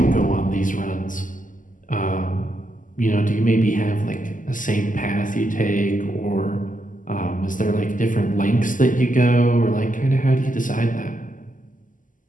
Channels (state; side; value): late; right; 0.38 ms